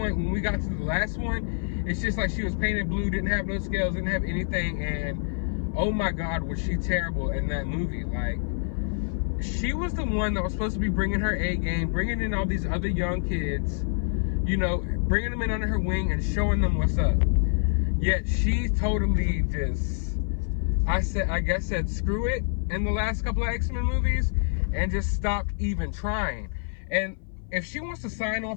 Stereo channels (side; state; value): right; silent; 56 dB below the other